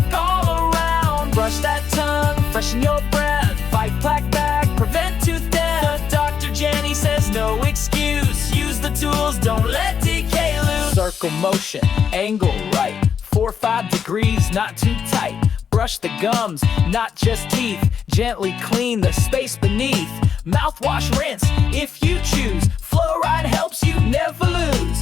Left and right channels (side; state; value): right; quieter; 7.3 dB